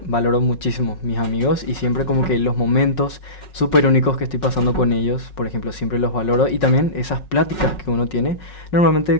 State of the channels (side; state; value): right; late; 5.4 ms